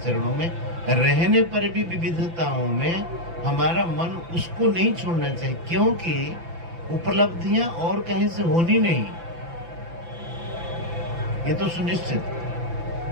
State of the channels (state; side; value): late; left; 5.9 ms